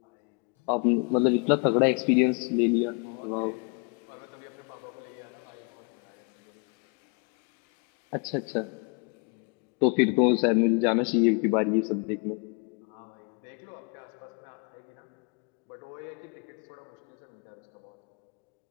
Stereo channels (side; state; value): right; quieter; 35.2 dB